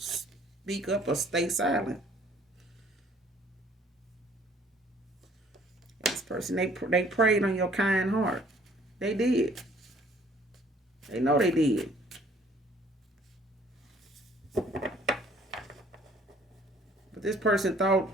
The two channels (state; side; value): normal; both; correlation 0.58